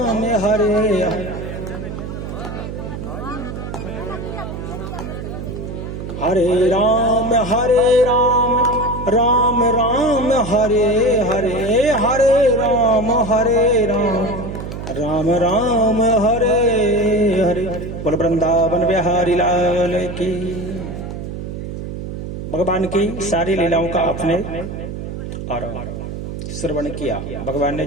हरे हरे, हरे राम राम राम हरे हरे, हरे राम राम राम हरे हरे। बोल वृंदावन बिहारी लाल की। भगवान की सारी लीलाओं का आपने और श्रवण किया। भगवान ने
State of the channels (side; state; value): right; noise; hum, 7 dB below the sound